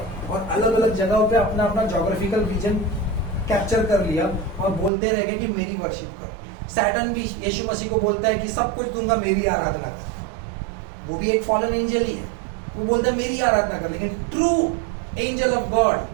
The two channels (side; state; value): left; drops out; at 4.9 s